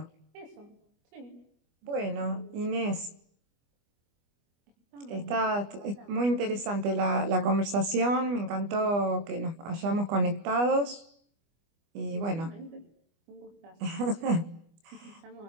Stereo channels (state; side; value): late; left; 25 ms